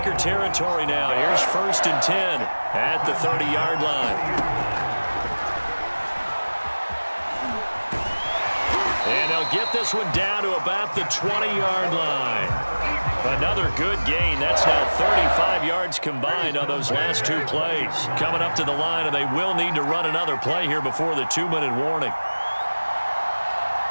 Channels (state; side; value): inverted; both; correlation -1.00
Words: territory now. Here's 1st and 10 at the 30-yard line. And they'll get this one down to about the 20-yard line. Another good gain. That's now 35 yards combined on those last 2 plays. Coming up to the line, and they will need to run another play here before the 2-minute warning.